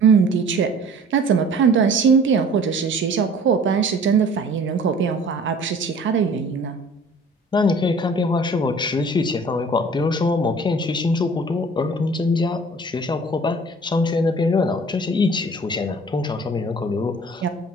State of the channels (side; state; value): both; normal; correlation 0.48